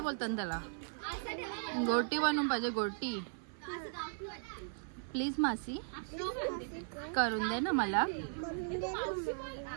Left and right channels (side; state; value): left; silent; 53 dB below the other